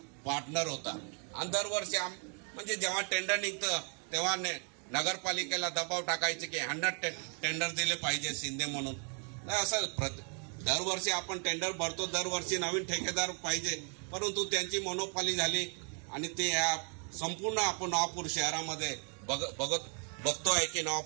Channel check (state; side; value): quieter; left; 39.9 dB